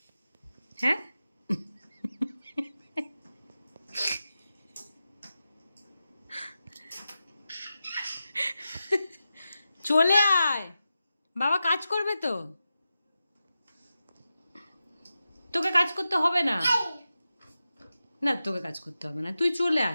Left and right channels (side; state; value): both; inverted; correlation -0.92